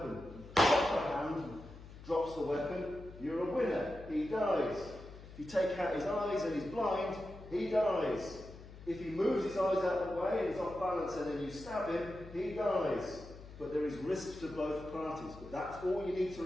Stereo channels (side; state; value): left; noise; hum, 16 dB below the sound